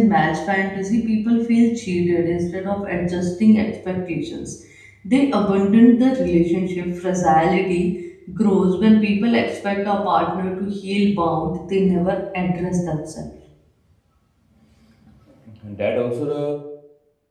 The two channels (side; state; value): both; identical; correlation 1.00